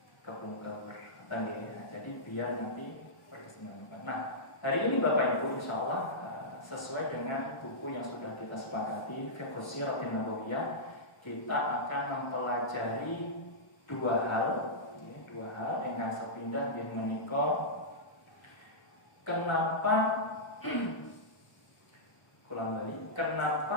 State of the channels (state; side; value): late; right; 1.0 ms